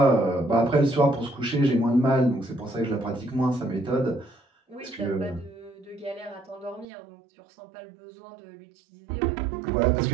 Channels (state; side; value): drops out; left; at 6.9 s